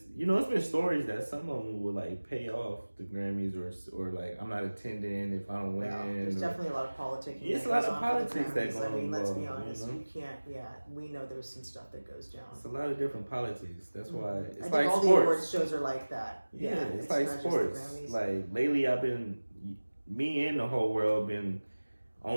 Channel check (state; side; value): inverted; both; correlation -1.00